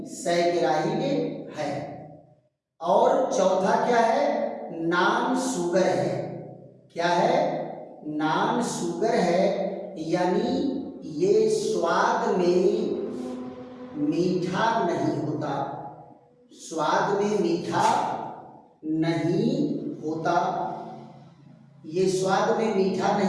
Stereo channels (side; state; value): both; identical; correlation 1.00